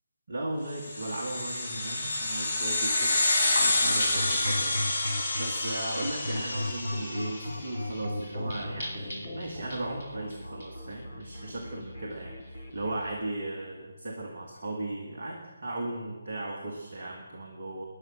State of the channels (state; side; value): inverted; both; correlation -0.86